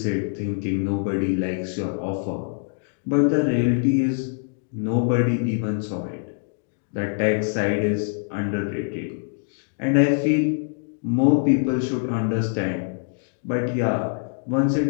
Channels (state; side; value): silent; right; digital silence